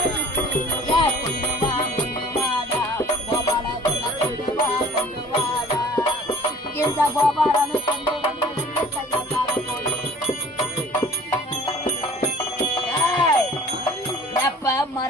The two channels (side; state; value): both; normal; correlation 0.48